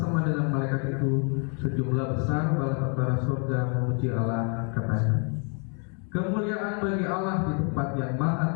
dengan malaikat itu sejumlah besar bala tentara surga memuji Allah, katanya, kemuliaan bagi Allah di tempat yang maha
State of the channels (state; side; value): quieter; right; 39.3 dB